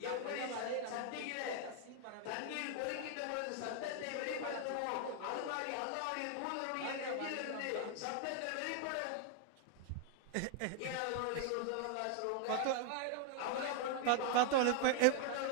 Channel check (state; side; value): different; both; correlation 0.00